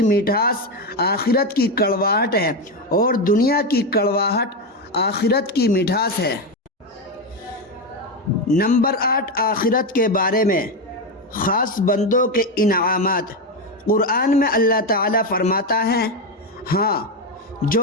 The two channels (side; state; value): both; normal; correlation 0.11